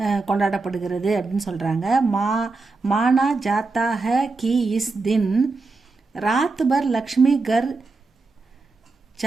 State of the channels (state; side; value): quieter; left; 3.8 dB